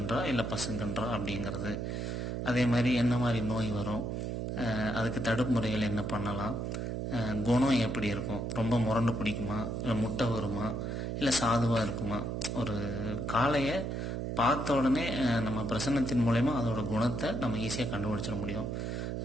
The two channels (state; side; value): noise; right; hum, 3 dB below the sound